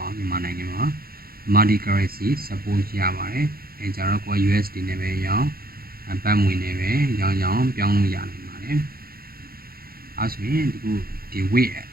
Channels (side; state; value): left; late; 0.44 ms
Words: ါဘူးမြန်မာနိုင်ငံမှာ multi currency support ရပါတယ်အဲကြတော့ကို USD နဲ့ပဲရောင်းဘတ်ငွေနဲ့ပဲရောင်းပြောင်းလို့ရနိုင်ပါတယ်အဲဆိုရင်ဒီ Wave